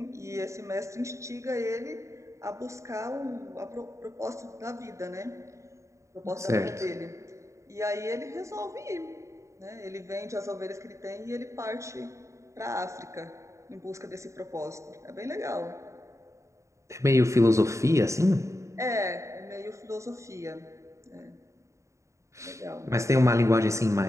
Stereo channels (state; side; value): late; left; 0.14 ms